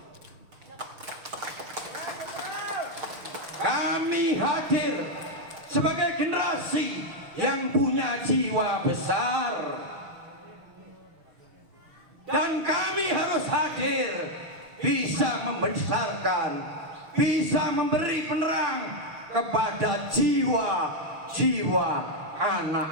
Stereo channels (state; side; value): late; left; 6.3 ms